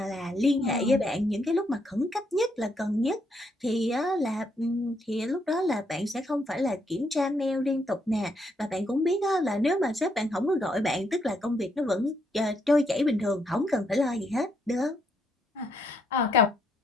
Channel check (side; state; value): both; normal; correlation 0.74